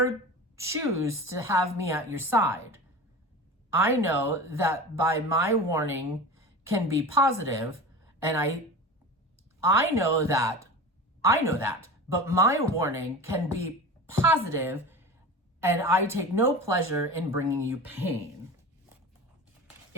choose to have me at your side. I know that by my warning can be positive, and I know that, but my warning can be positive, and I take no pleasure in bringing you pain.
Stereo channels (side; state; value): both; normal; correlation 0.32